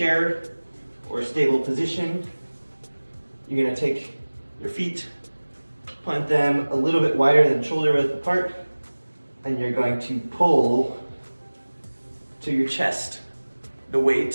or a stable position. You're gonna take your feet, plant them a little bit wider than shoulder width apart, and you're going to pull to your chest, the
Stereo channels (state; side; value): inverted; both; correlation -1.00